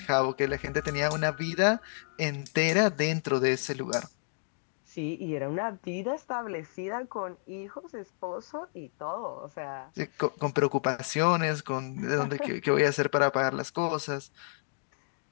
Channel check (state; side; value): silent; right; digital silence